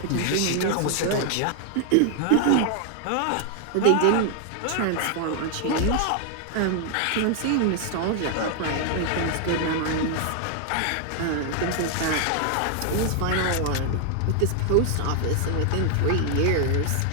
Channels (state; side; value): different; both; correlation 0.00